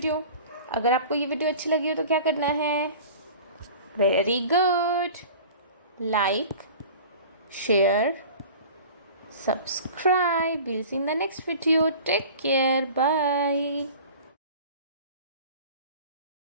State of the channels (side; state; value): both; inverted; correlation -0.41